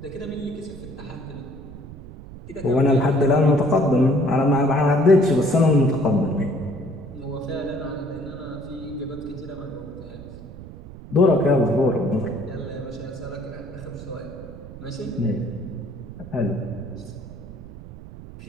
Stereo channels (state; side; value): noise; right; rumble, 15 dB below the sound